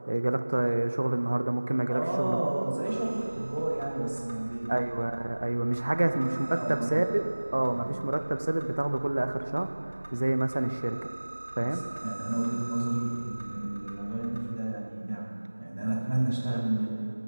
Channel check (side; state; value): both; inverted; correlation -1.00